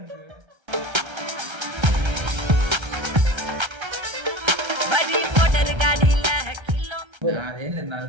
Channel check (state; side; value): late; left; 1.3 ms